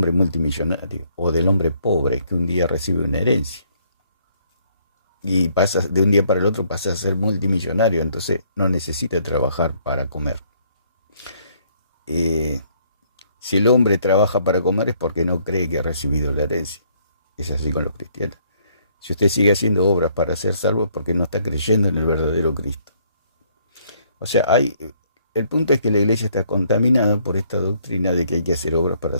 multimillonario o del hombre pobre que un día recibe una herencia y pasa de un día para el otro pasa a ser multimillonario, entonces no necesita trabajar para comer. Si el hombre trabaja para comer es porque no cree que ha recibido la herencia. Es así con los cristianos. Si usted sigue haciendo obras para ser salvo es porque no está creyendo en el verdadero Cristo. O sea, el punto es que la iglesia está contaminada por esta doctrina de que hay que hacer obras para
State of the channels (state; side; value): inverted; both; correlation -0.66